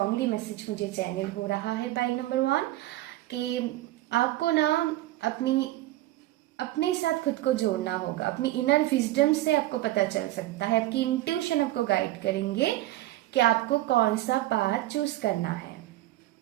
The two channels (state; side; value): quieter; left; 16.3 dB